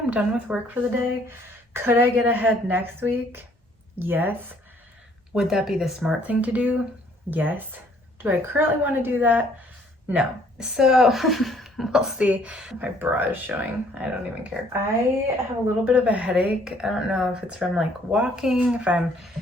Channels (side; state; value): both; normal; correlation 0.62